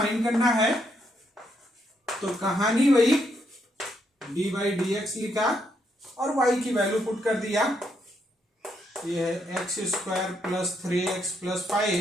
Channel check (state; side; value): normal; both; correlation 0.76